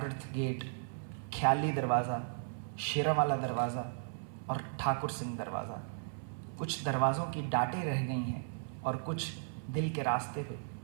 गेट, ख्याली दरवाज़ा, शेरावाला दरवाज़ा और ठाकुर सिंह दरवाज़ा। कुछ दरवाज़ों की डाटें रह गई हैं और कुछ दिल के रास्ते पे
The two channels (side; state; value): left; silent; 54 dB below the other